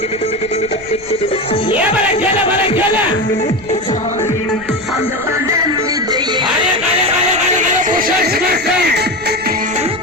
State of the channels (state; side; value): noise; right; rumble, 20 dB below the sound